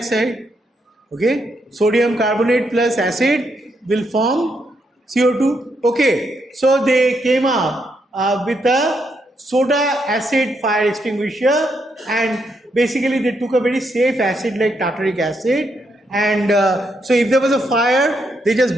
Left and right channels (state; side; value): normal; both; correlation 0.78